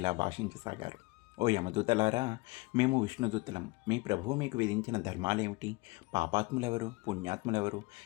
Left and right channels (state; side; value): quieter; right; 24.2 dB